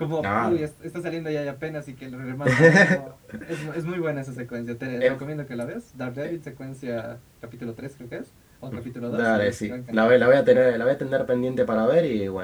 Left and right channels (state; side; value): identical; both; correlation 1.00